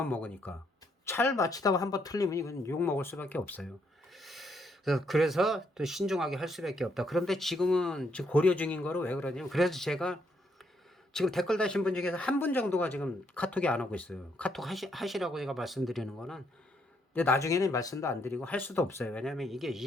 먹으니까. 잘 맞히다가 한 번 틀리면 이건 욕 먹을 수밖에 없어요. 그래서 또 신중하게 할 수밖에 없다. 그런데 지금은 지금 고려 중인 거로 왜 그러냐면 그래서 제가 지금 댓글 다신 분 중에서 한 분 정도가 지금 카톡이 안 오고 있어요. 카톡 하시라고 제가 말씀드리는 거는 근데 나중에는 말씀도 안 드리고 할 수도 없어요. 왜냐하면 이게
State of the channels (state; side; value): normal; both; correlation 0.73